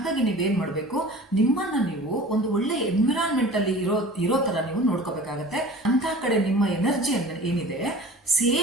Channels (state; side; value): normal; both; correlation 0.41